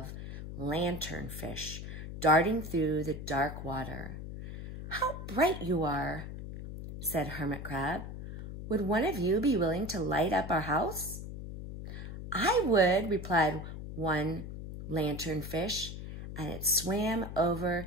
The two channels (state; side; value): noise; left; hum, 9 dB below the sound